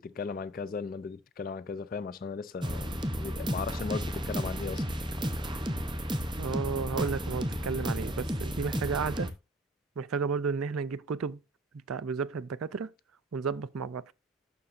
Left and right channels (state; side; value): normal; both; correlation 0.51